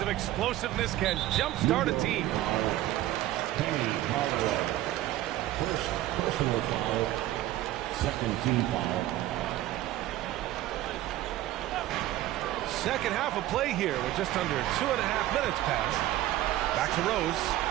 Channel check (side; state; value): left; quieter; 14.7 dB